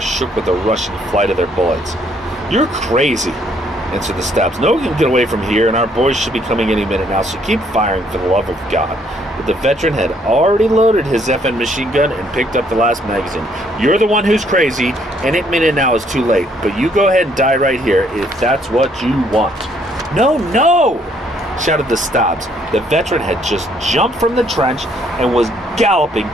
with the rushing flight of their bullets. "You're crazy," answered the Stabs. "No one can get away from here, and our boys should be coming any minute now, so keep firing for the love of God." But the veteran had already loaded his FN machine gun and picked up the last magazine. "You're the one who's crazy. Any minute now is too late, but you go ahead and die right here if that's what you want." "No, no!" shouted the Stabs. The veteran had just jumped from the trench and was galloping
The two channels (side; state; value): both; normal; correlation 0.67